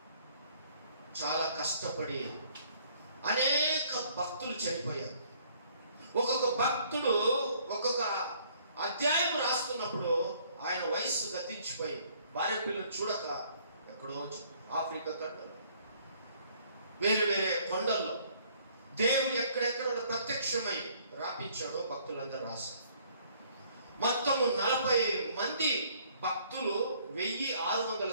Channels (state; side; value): inverted; both; correlation -0.61